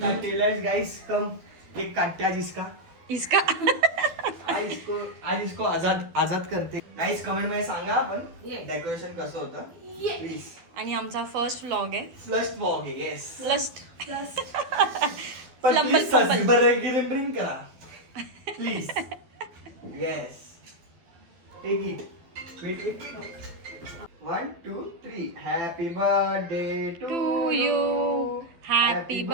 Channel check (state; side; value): late; left; 12 ms